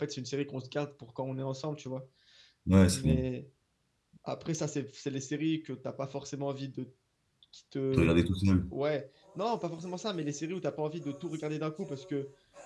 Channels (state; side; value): identical; both; correlation 1.00